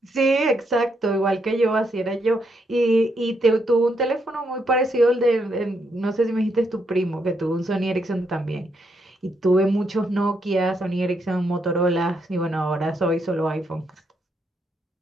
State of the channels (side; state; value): both; normal; correlation 0.78